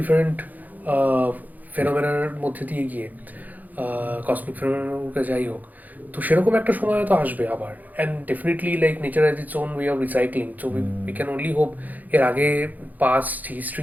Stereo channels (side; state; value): left; late; 0.081 ms